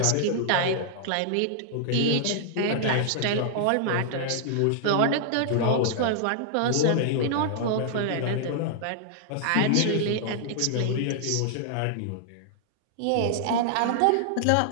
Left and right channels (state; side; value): different; both; correlation -0.01